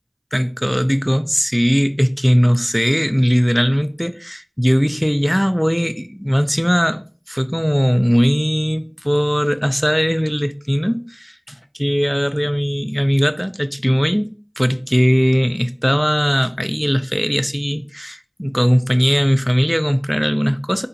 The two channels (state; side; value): identical; both; correlation 1.00